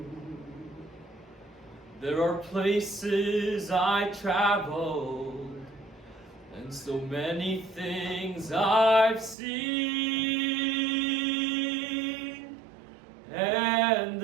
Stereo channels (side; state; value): left; drops out; at 9.3 s